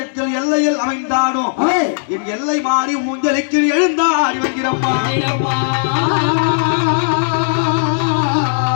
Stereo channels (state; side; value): silent; right; digital silence